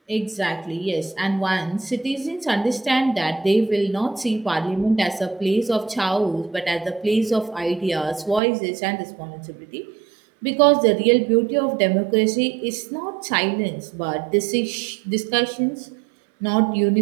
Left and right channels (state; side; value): drops out; left; at 8.4 s